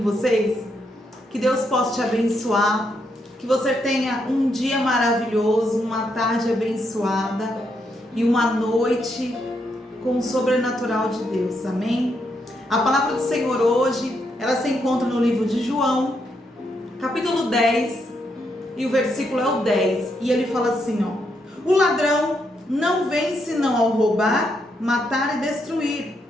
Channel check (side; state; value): both; normal; correlation 0.79